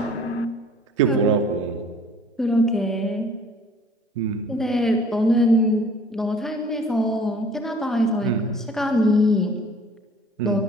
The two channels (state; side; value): normal; both; correlation 0.51